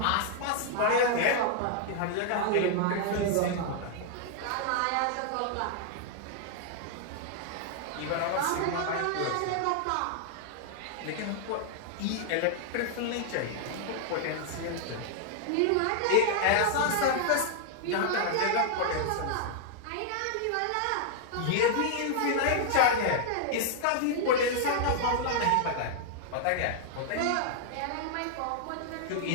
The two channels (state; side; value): different; both; correlation 0.00